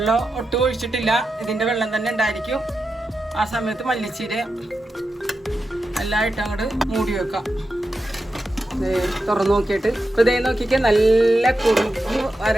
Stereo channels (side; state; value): both; normal; correlation 0.89